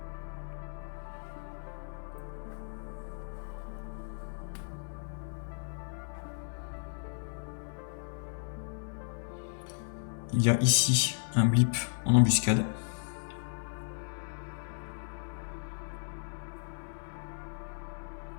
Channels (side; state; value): right; silent; digital silence